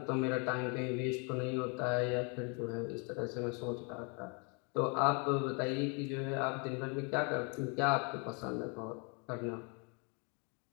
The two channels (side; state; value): right; quieter; 34.1 dB